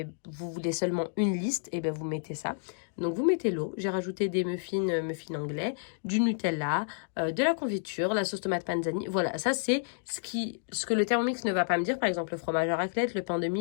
voulez seulement une liste, et bien vous mettez ça. Donc vous mettez l'eau. J'ai rajouté des muffins anglais, du Nutella, de la confiture, la sauce tomate panzani. Voilà, ça c'est ce que le Thermomix ne va pas me dire. Par exemple, le fromage à raclette, le pain de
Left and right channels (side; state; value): right; silent; digital silence